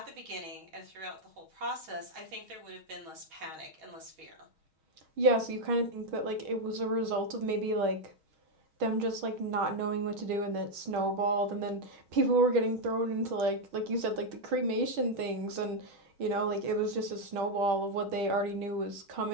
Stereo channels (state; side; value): late; left; 6.3 ms